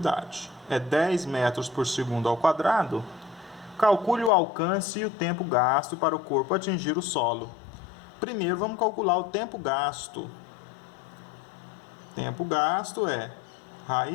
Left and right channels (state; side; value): drops out; right; at 4.3 s